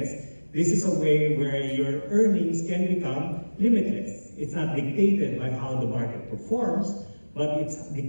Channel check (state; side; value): inverted; both; correlation -1.00